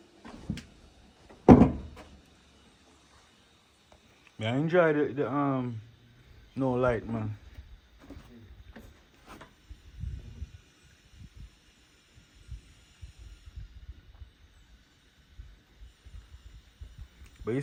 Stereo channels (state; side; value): identical; both; correlation 1.00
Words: I enjoy the no light, man. But you